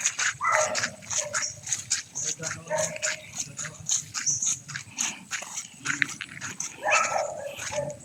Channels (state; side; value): identical; both; correlation 1.00